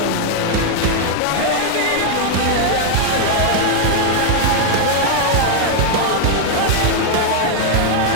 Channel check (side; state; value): both; different; correlation 0.00